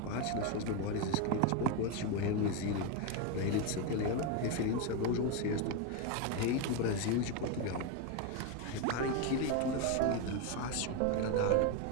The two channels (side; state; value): both; different; correlation 0.02